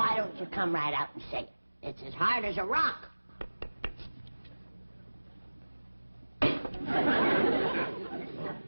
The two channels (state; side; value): inverted; both; correlation -1.00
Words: don't you come right out and say it? It's as hard as a rock.